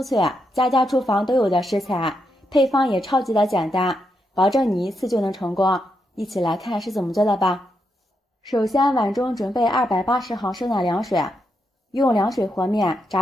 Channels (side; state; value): both; normal; correlation 0.82